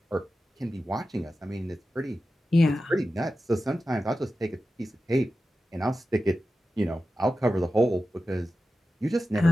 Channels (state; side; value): normal; both; correlation 0.93